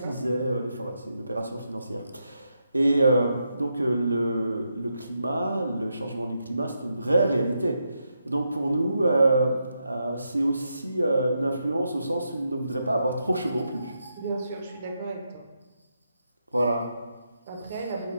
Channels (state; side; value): inverted; both; correlation -0.83